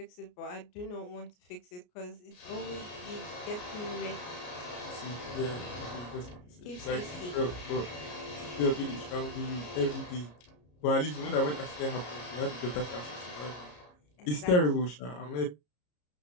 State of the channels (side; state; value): right; late; 33 ms